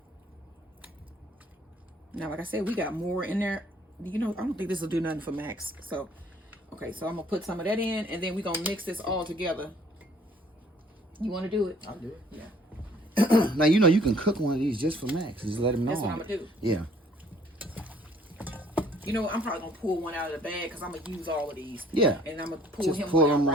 Now, like I said, we got more in there. You know, I don't think this will do nothing for Max. So, okay, so I'm gonna put some of that in, and then we're gonna mix this all together. You want to do it? I'll do it. Yeah. Now, you know, you can cook one of these just for Max. Just let him know. That's what I'm going to do. Yeah. You know, I'm probably going to pull one out of the bag, because I'm going to use all of these. Yeah. And I'm going to pull just him pull one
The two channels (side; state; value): both; normal; correlation 0.59